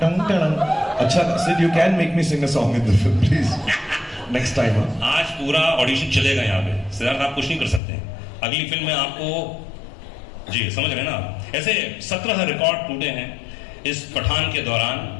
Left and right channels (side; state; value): right; drops out; at 7.8 s